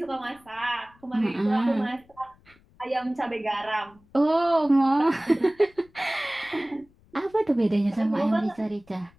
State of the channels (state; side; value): noise; left; rumble, 30 dB below the sound